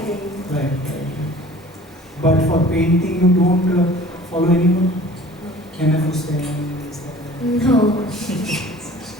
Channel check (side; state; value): both; normal; correlation 0.47